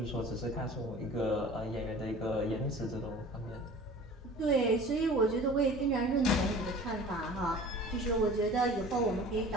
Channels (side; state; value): both; normal; correlation 0.43